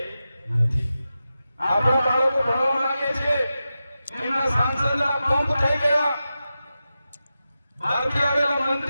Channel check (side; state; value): both; inverted; correlation -0.91